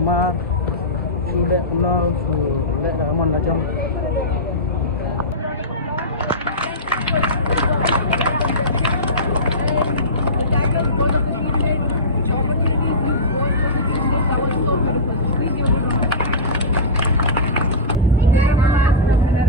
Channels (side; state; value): both; normal; correlation -0.19